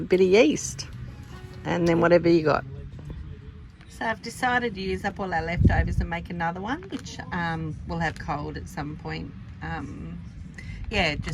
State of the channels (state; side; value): identical; both; correlation 1.00